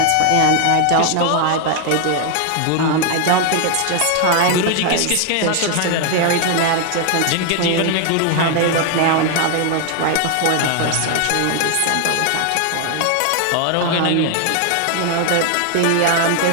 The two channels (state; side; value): different; both; correlation 0.00